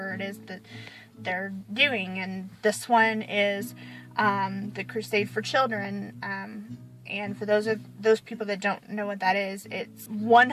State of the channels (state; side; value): identical; both; correlation 1.00